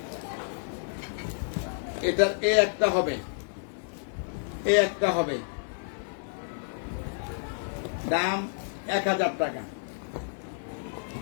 এটার এ একটা হবে, এ একটা হবে, দাম 1000 টাকা।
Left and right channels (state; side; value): silent; right; digital silence